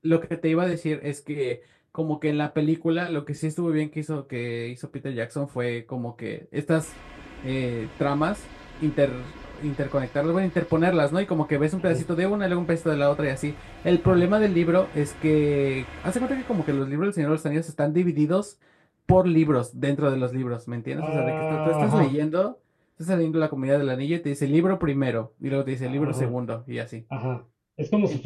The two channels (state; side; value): identical; both; correlation 1.00